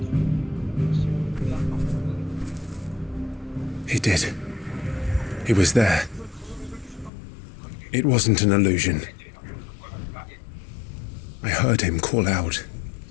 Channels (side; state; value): right; drops out; at 7.1 s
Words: He did. He was there. It wasn't an illusion. I heard him call out